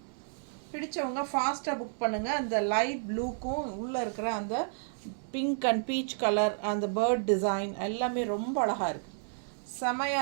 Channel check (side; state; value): left; silent; digital silence